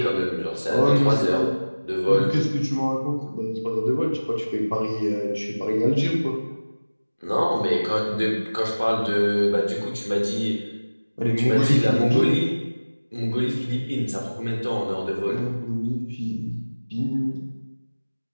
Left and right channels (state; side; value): inverted; both; correlation -1.00